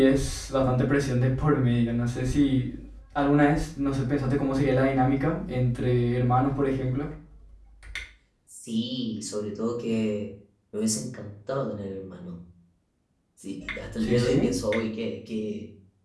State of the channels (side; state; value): both; identical; correlation 1.00